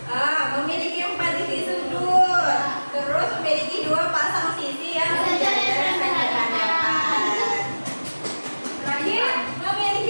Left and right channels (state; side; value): inverted; both; correlation -1.00